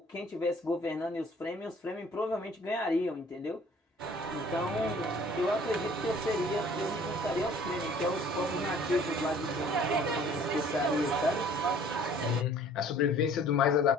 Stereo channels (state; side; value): normal; both; correlation 0.53